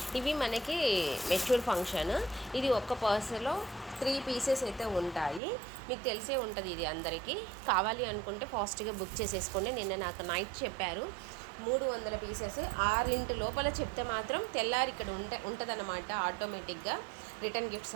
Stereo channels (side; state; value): left; drops out; at 5.4 s